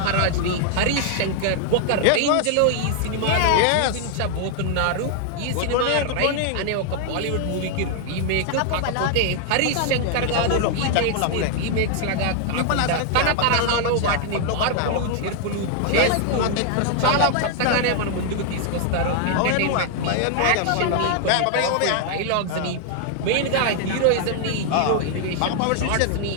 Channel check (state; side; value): different; both; correlation 0.00